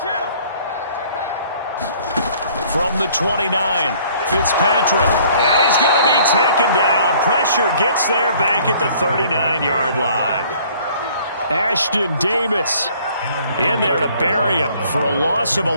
From the 29, Fitzpatrick. And he's going to be taken down. Pressure gets there back at the 39-yard line. Ashton Davis in there to bury him for a loss of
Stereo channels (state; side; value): inverted; both; correlation -0.57